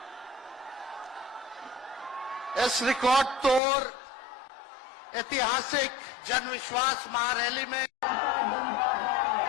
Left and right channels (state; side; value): drops out; right; at 3.6 s